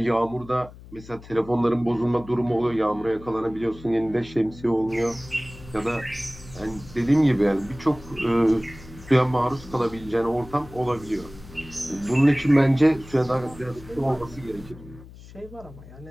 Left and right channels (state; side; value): noise; left; hum, 18 dB below the sound